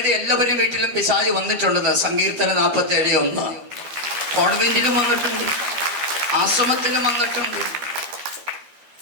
എല്ലാവരും വീട്ടിലും പിശാച് വന്നിട്ടുണ്ടെന്ന്. സങ്കീർത്തനം 47:1. കോൺവെന്റിലും വന്നിട്ടുണ്ട്, ആശ്രമത്തിലും വന്നിട്ടുണ്ട്.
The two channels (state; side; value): late; left; 12 ms